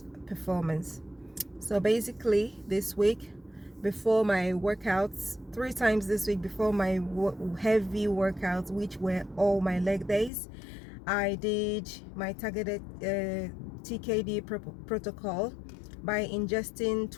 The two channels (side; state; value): right; drops out; at 10.3 s